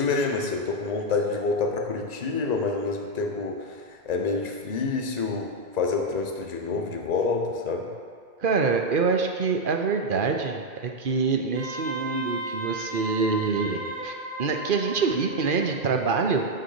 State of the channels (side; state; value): left; late; 2.4 ms